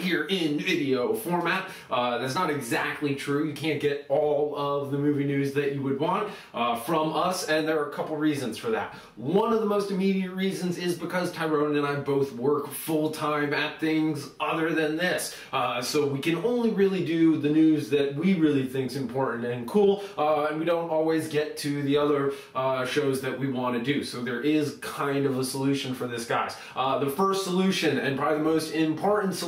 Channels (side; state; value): both; identical; correlation 1.00